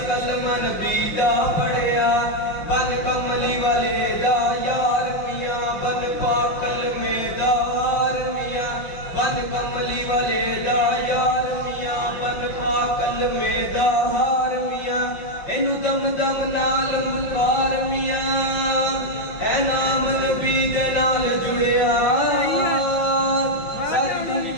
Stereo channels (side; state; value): right; late; 5.6 ms